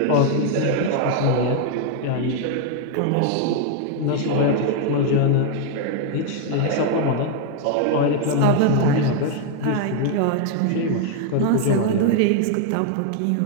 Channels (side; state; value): both; different; correlation 0.00